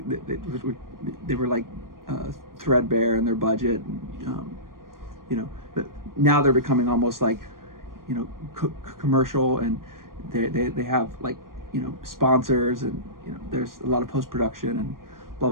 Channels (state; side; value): late; left; 0.91 ms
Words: they were like threadbare in their budget, and, but now they're becoming almost like commercial, and they have like sponsors, and there's a lot of post-production and blah